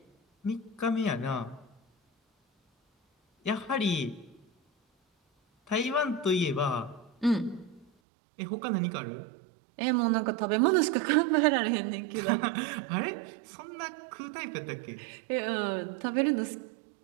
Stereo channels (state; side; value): drops out; left; at 7.9 s